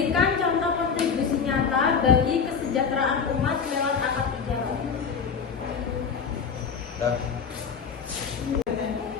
contoh kontribusi nyata bagi kesejahteraan umat lewat akad tijarah.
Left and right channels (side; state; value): right; quieter; 6.1 dB